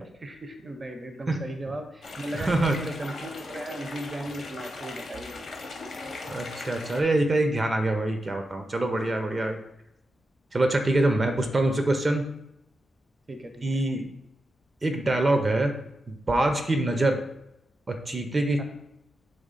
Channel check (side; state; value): both; normal; correlation 0.89